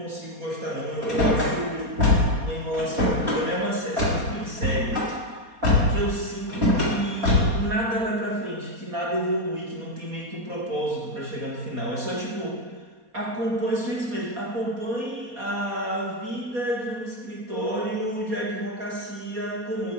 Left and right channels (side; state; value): left; late; 4.2 ms